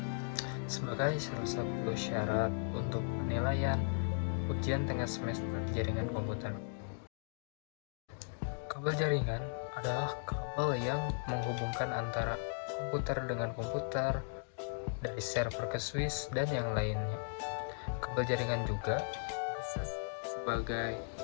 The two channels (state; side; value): silent; right; digital silence